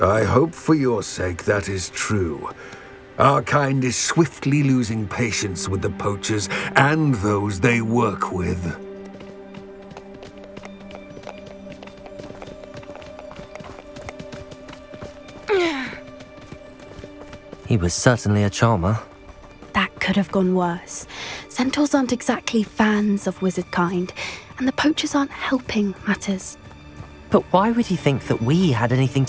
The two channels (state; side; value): identical; both; correlation 1.00